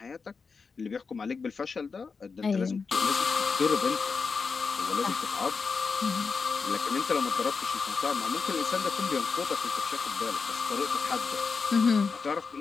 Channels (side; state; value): right; quieter; 5.0 dB